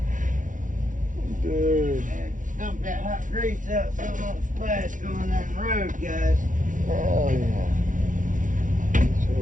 Dude. Dump that hot grease out so it won't splash going down the road, guys. Hell yeah. So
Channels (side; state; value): left; late; 0.38 ms